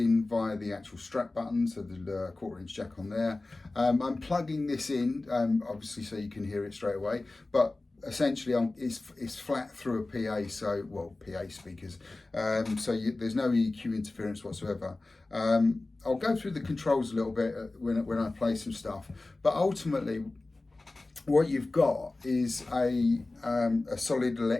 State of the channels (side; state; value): right; quieter; 3.1 dB